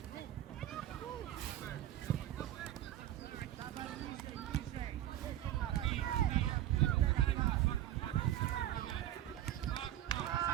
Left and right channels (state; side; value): quieter; left; 12.6 dB